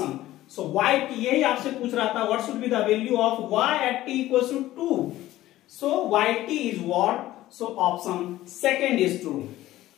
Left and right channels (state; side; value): quieter; right; 15.3 dB